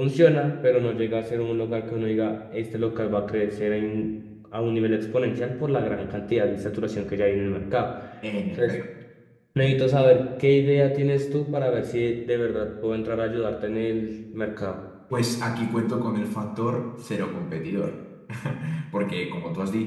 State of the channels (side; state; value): both; identical; correlation 1.00